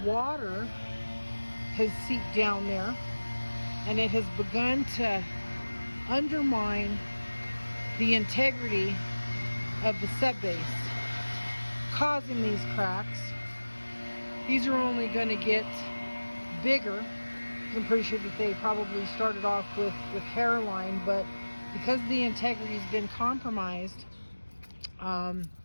water has seeped down there, and it has begun to undermine the integrity of the subbase, causing these cracks. These are only going to get bigger. I'm pretty sure that they probably started off with hairline, but because the integrity has been compromised,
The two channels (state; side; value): inverted; both; correlation -1.00